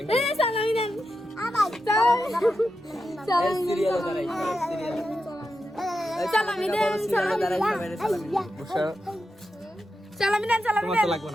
এ সালামি দেন সালামি দেন সালামি দেন সালামি দেন সালামি তোমার দেন তো লাগবে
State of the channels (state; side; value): normal; both; correlation 0.88